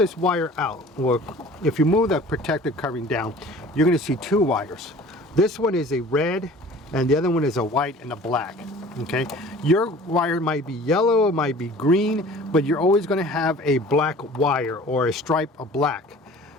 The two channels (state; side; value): normal; both; correlation 0.46